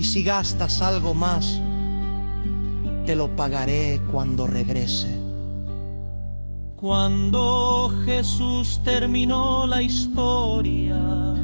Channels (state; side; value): inverted; both; correlation -1.00